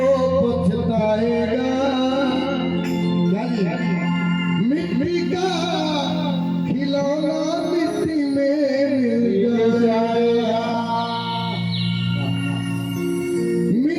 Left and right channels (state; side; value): identical; both; correlation 1.00